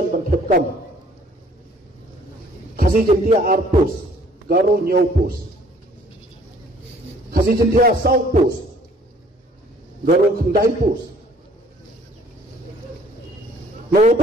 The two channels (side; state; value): both; normal; correlation 0.57